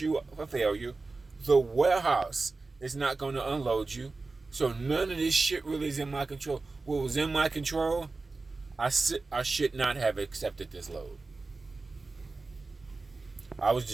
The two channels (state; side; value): quieter; left; 3.7 dB